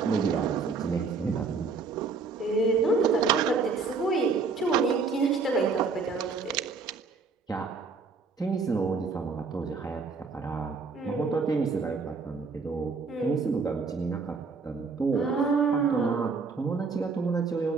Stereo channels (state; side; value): quieter; left; 4.6 dB